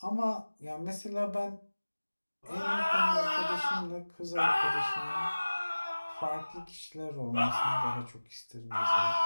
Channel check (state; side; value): inverted; both; correlation -1.00